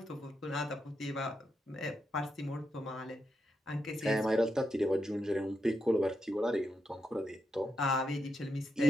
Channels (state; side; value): normal; both; correlation 0.85